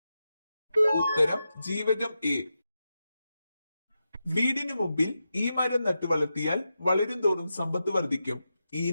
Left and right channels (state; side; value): inverted; both; correlation -0.89